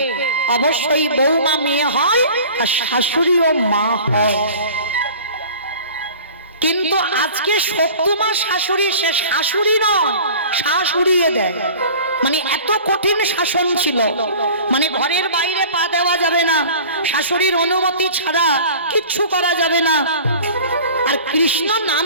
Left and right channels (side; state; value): both; inverted; correlation -0.42